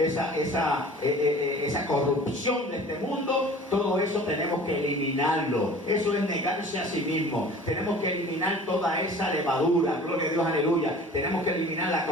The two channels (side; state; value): both; normal; correlation 0.44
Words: corrupción de este mundo. Todo eso tenemos que eliminarlo. Eso es negarse a sí mismo. Tenemos que eliminar toda esa levadura, gloria a Dios, aleluya. Tenemos que eliminar la